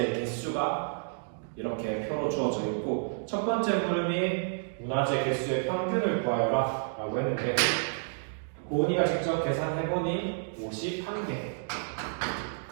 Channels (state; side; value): silent; left; digital silence